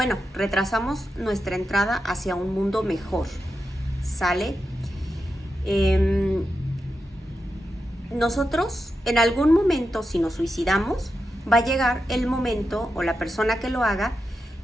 retrasamos nuestra entrada hacia un mundo mejor, ¿sale? Nosotros, en algún momento, si nos suicidamos, va a llegar el momento, o la persona que lo haga,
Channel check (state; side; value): normal; both; correlation 0.88